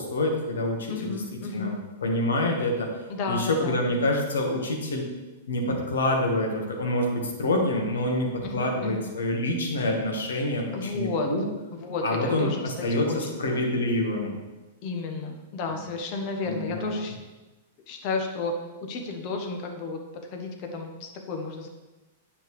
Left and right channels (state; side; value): inverted; both; correlation -0.32